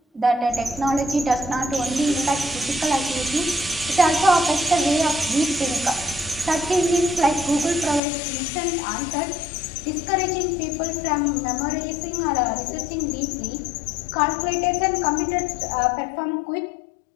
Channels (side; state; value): right; drops out; at 8.0 s